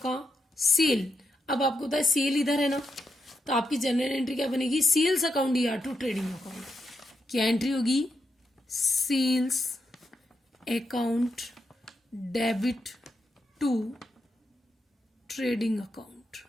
सेल। अब आपको पता है सेल इधर है ना, तो आपकी जनरल एंट्री क्या बनेगी, sales account DR to trading account. क्या एंट्री होगी, sales account debit to trading account,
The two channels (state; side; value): normal; both; correlation 0.83